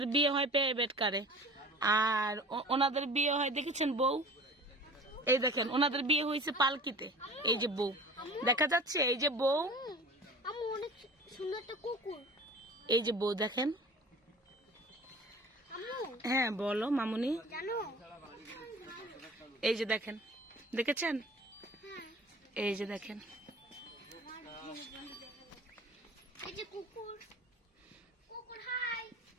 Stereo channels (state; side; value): normal; both; correlation 0.42